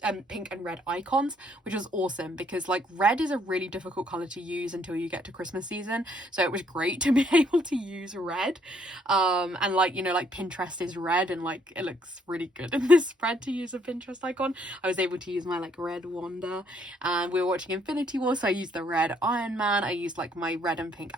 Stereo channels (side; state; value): both; normal; correlation 0.68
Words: pink and red icons, which was awesome, because like red is a really difficult color to use until you get to Christmas season. So it was great to be able to use red. And like, you know, like Pinterest is red, and like it looks really good in this spread to use a Pinterest icon. I was able to use my like red Wanda. And we were watching Infinity War, so I used the red Iron Man. I used like my red and pink